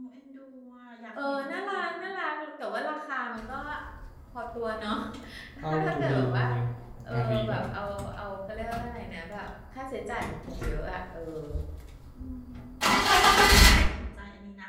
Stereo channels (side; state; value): both; identical; correlation 1.00